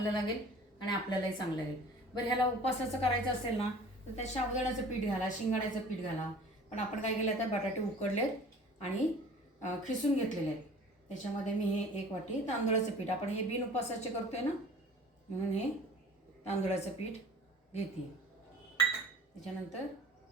लागेल आणि आपल्यालाही चांगलं लागेल। बरं, ह्याला उपवासाचं करायचं असेल ना तर त्या साबुदाण्याचं पीठ घाला, शिंगाड्याचं पीठ घाला। पण आपण काय केलं, तर बटाटे उकडलेत आणि खिसून घेतलेले आहेत। त्याच्यामध्ये मी हे 1 वाटी तांदूळाचं पीठ, आपण हे बिन उपवासाचे करतोय ना म्हणून हे तांदूळाचं पीठ घेते। त्याच्यानंतर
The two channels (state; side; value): normal; both; correlation 0.45